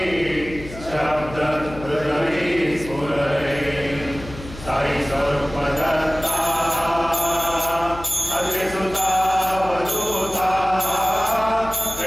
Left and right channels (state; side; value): noise; left; hum, 14 dB below the sound